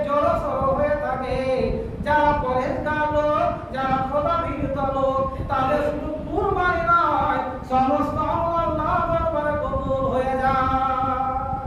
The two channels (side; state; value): both; identical; correlation 1.00